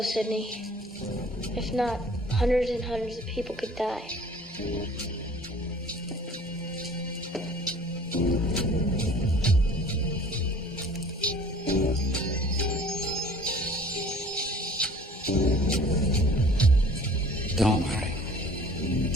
Sidney. If not, hundreds and hundreds of people could die. Don't worry.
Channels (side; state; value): both; normal; correlation 0.49